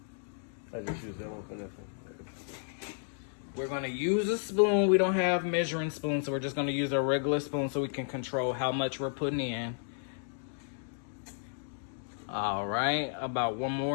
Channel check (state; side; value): silent; right; digital silence